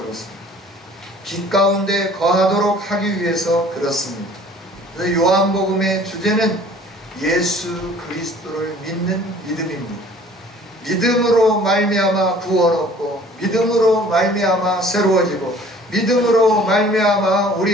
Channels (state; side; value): normal; both; correlation 0.51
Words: 빛 가운데 거하도록 하기 위해서 그렇습니다. 그래서 요한복음의 주제는 예수 그리스도를 믿는 믿음입니다. 믿음으로 말미암아 구원 얻고 믿음으로 말미암아 새로워지고 믿음으로 말미암아